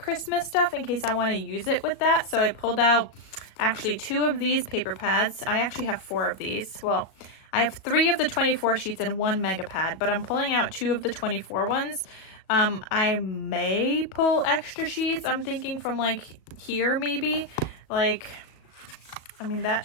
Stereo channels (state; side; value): late; right; 37 ms